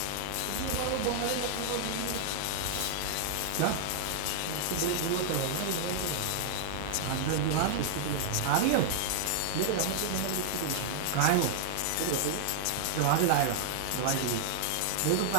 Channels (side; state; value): both; different; correlation -0.01